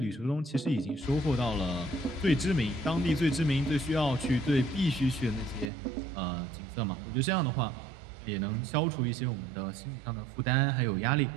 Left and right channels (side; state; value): left; drops out; at 5.7 s